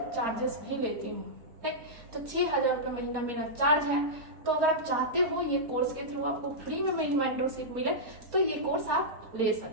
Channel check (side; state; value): left; late; 4.3 ms